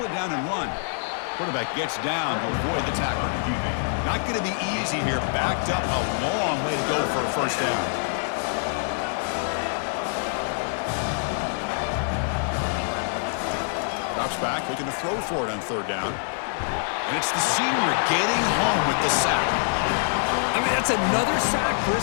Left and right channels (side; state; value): right; silent; 62 dB below the other